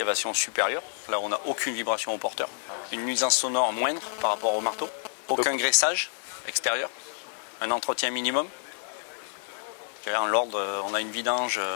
supérieure. Là, on n'a aucune vibration au porteur. Une nuisance sonore moindre par rapport au marteau. Aucun graissage extérieur. Un entretien minimum. En l'ordre, on a une vidange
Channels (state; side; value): silent; right; 59 dB below the other